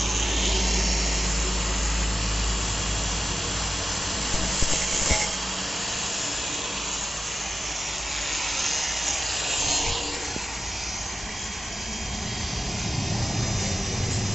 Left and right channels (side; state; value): both; normal; correlation 0.94